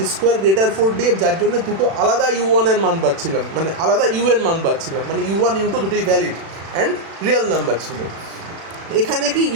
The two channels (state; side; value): late; left; 36 ms